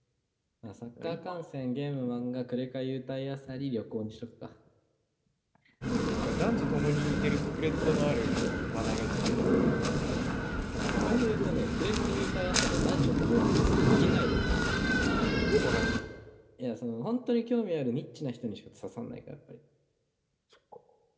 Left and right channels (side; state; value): both; identical; correlation 1.00